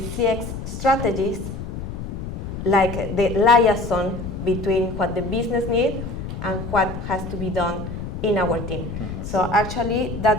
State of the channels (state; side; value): noise; left; rumble, 7 dB below the sound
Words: CX strategists, like the liaison between what the business needs and what has to be done in our team. So actually,